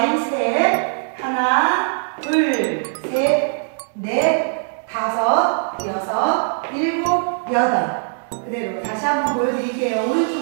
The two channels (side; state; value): left; silent; digital silence